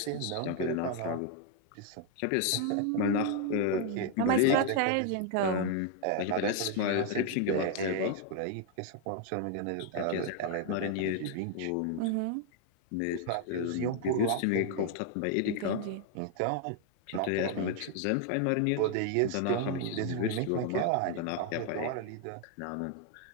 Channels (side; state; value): both; different; correlation 0.00